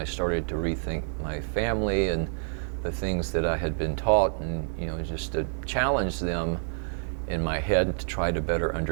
started to rethink my family and the things that I had been taught, and just to challenge them in my head to try to better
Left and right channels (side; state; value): left; silent; digital silence